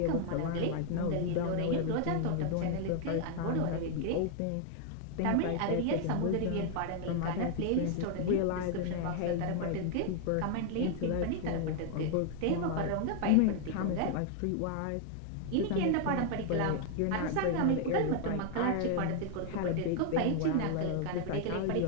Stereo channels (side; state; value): both; different; correlation 0.00